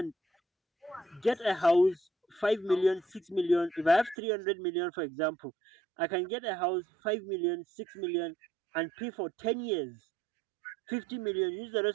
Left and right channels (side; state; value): left; drops out; at 4.2 s